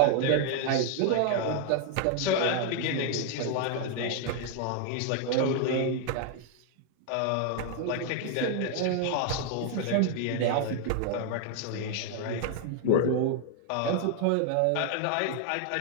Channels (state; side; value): different; both; correlation 0.00